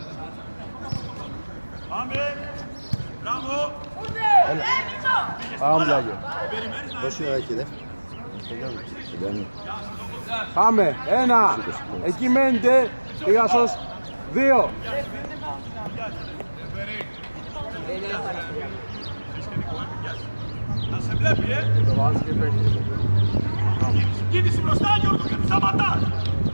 Πάμε. Μπράβο. Πάμε πλάγιο. Περιμένεις να Πόση ώρα έχει δεύτερη. Πάμε. Ένα. Εκεί μένετε. Πήγα σως. Δύο. να σε βλέπει, Κίνηση μπροστά, Γιώργο, και του σταματάς.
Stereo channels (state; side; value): inverted; both; correlation -1.00